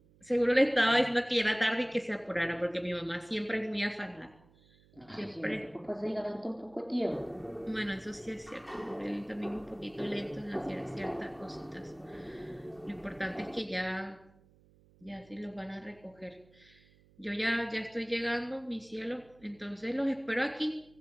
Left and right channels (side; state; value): right; noise; hum, 28 dB below the sound